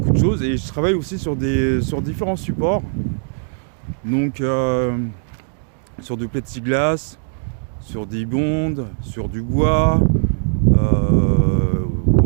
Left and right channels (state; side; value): silent; left; digital silence